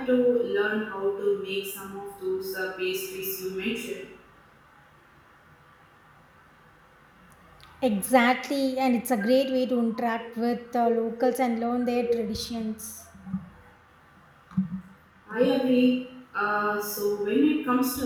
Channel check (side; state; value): both; identical; correlation 1.00